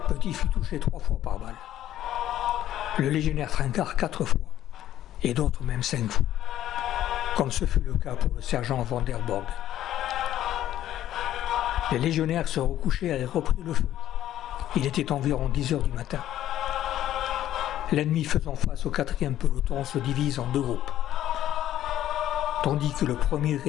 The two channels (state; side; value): quieter; right; 12.5 dB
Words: Petit fut touché 3 fois par balle. Le légionnaire Trincard 4 fois, et d'autres même 5 fois, comme ce fut le cas pour le sergent Van der Borg. Les légionnaires se recouchaient et avaient repris le feu. Il était environ 10 heures du matin. L'ennemi faisant face au 4e peloton se divise en deux groupes. Tandis que le premier